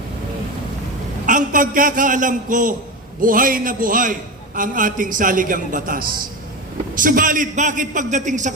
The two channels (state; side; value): normal; both; correlation 0.22